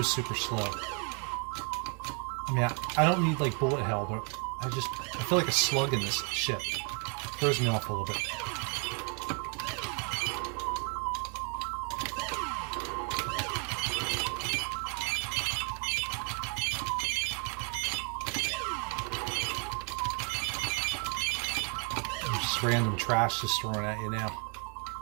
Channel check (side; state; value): left; quieter; 37.1 dB